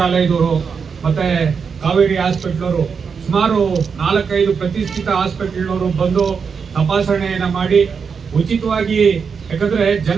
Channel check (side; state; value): left; quieter; 6.0 dB